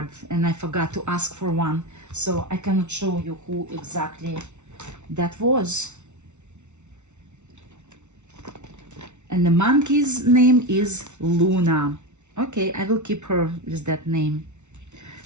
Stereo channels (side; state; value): left; late; 0.83 ms